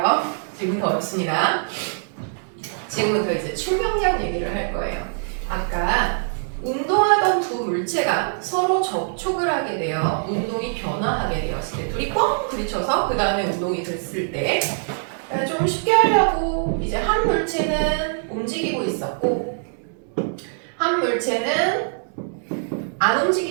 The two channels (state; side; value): silent; left; 63 dB below the other